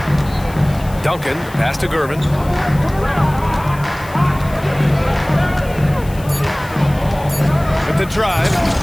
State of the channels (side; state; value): left; noise; hiss, 20 dB below the sound